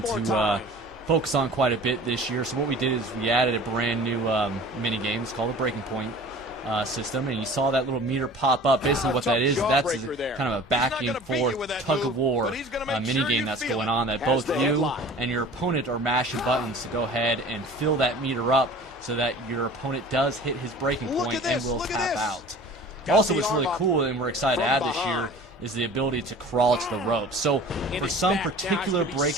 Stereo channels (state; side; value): normal; both; correlation 0.43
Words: to focus on quite a bit this year. So what we did is we added a brand new mini game. It's called the Breaking Point system, and you saw that little meter pop up. Basically what that is, that's kind of a back and forth tug-of-war mini game that's going on, that both you and your opponent are mashing buttons to go ahead and fill that meter up so that your opponent does hit his breaking point and will tap out. Also, what's really cool and we're excited to add this year is the ability to crawl to the ropes. So for some particular